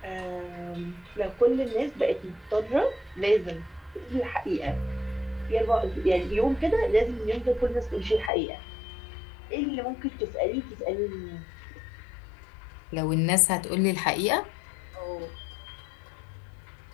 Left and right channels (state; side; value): drops out; right; at 8.3 s